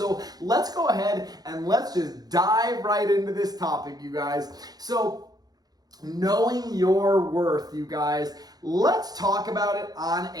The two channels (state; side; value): late; left; 0.19 ms